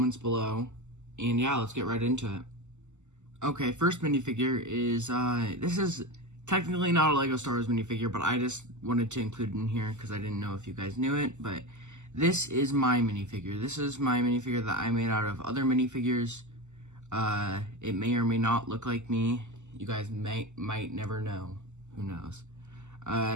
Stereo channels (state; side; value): late; left; 0.84 ms